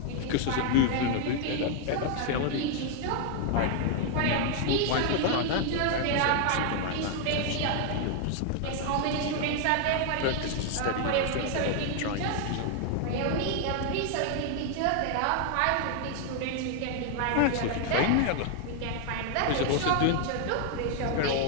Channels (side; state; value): both; different; correlation 0.00